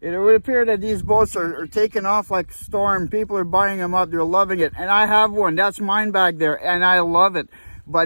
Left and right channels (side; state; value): both; inverted; correlation -1.00